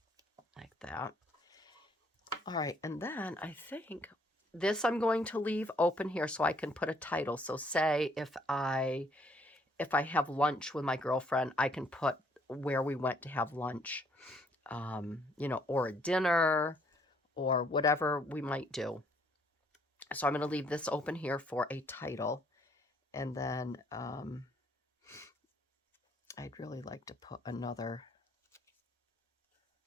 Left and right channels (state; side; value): normal; both; correlation 0.65